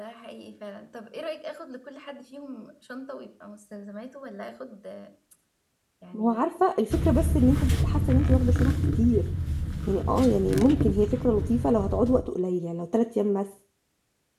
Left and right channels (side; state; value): both; identical; correlation 1.00